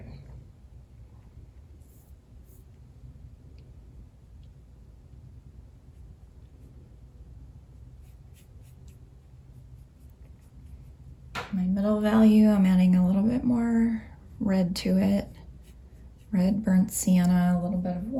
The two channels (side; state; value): both; identical; correlation 1.00